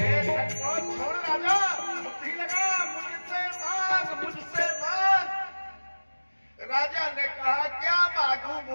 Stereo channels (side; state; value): both; inverted; correlation -1.00